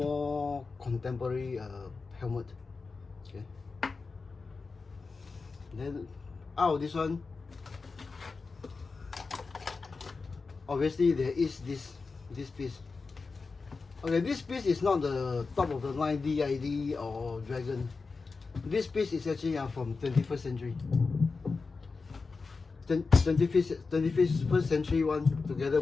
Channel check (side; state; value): right; quieter; 4.3 dB